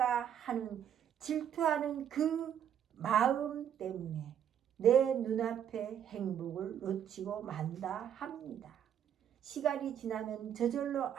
하는 질투하는 그 마음 때문에 내 눈앞의 행복을 놓치고 만다 합니다. 시간이 지나면 저절로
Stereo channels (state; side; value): quieter; left; 9.2 dB